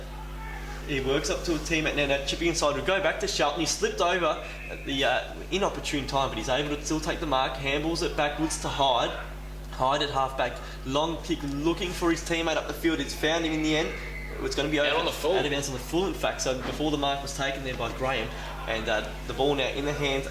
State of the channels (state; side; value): identical; both; correlation 1.00